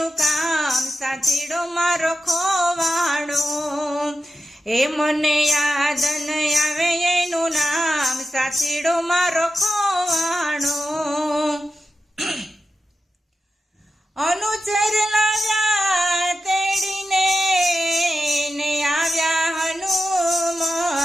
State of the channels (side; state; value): both; normal; correlation 0.91